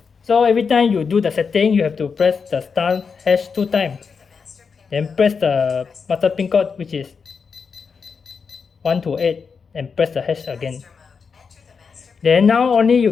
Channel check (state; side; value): quieter; right; 5.6 dB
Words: So every time you do the setting, you have to press the start hash 2 times. Then press the master pin code, which is 1 to 8, and press the hash again. Then now only you